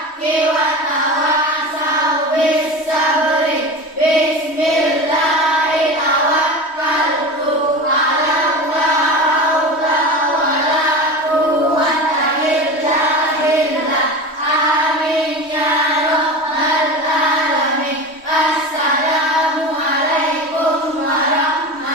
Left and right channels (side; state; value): right; late; 3.1 ms